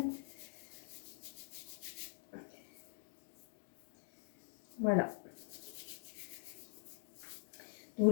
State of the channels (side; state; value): right; silent; digital silence